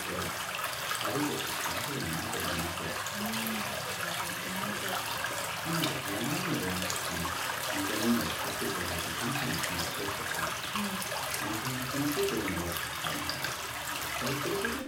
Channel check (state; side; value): identical; both; correlation 1.00